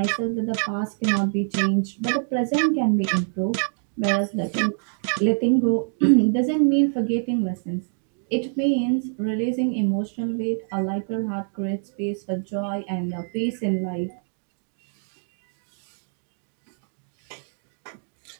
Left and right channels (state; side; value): silent; left; digital silence